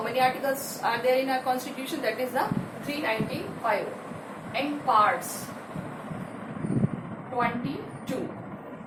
many articles are there in our Constitution? That is the 395. And parts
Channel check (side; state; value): both; identical; correlation 1.00